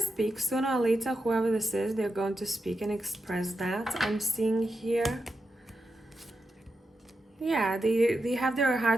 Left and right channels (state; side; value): normal; both; correlation 0.87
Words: sooner or later. Whoever this is, they're going to speak and express that. I'm seeing here. Yeah, they have their